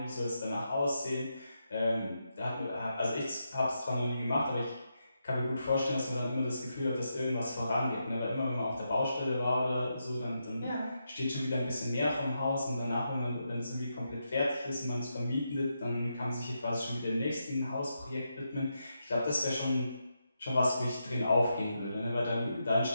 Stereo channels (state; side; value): inverted; both; correlation -0.84